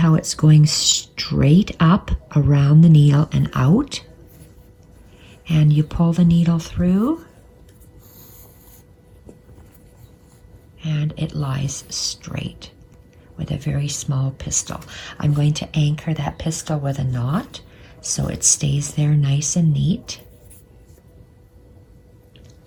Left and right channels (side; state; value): both; identical; correlation 1.00